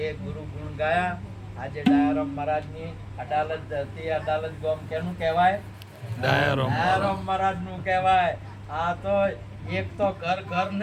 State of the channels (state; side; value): identical; both; correlation 1.00